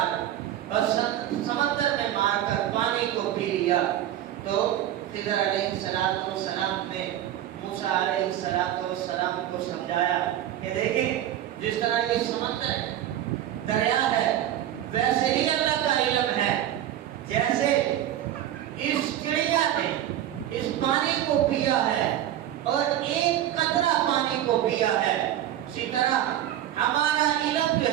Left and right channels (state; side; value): quieter; left; 12.0 dB